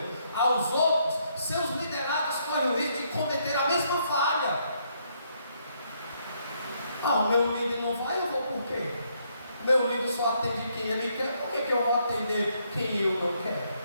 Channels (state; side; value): inverted; both; correlation -0.73